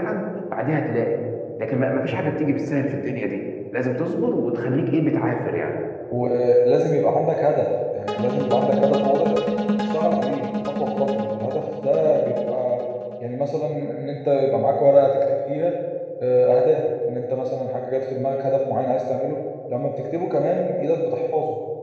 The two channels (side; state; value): both; identical; correlation 1.00